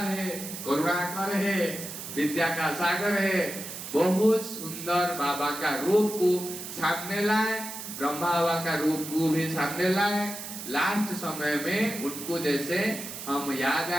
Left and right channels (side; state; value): right; noise; hiss, 9 dB below the sound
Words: है, करुणाकर है, विद्या का सागर है। बहुत सुंदर बाबा का रूप को सामने लाए, ब्रह्मा बाबा का रूप को भी सामने लाए। लास्ट समय में उनको जैसे हम याद